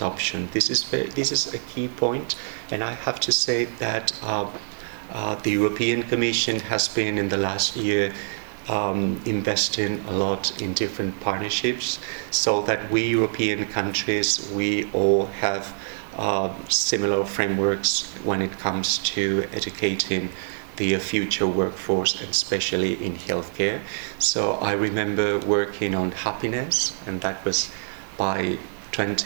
This is a key point, and I have to say that the European Commission has been in the last year investing a lot in different partnerships, so that we European countries, we all have similar frameworks when it comes to educating the future workforce, and especially in healthcare. So I remember working on happiness, and that was by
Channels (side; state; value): left; silent; digital silence